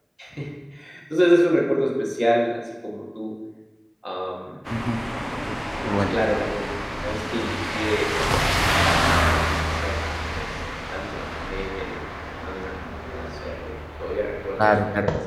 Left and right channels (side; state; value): both; identical; correlation 1.00